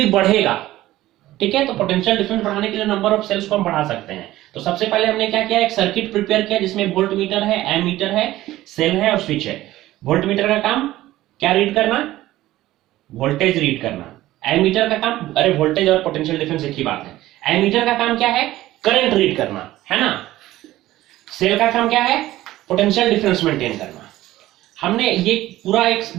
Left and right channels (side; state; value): left; quieter; 15.7 dB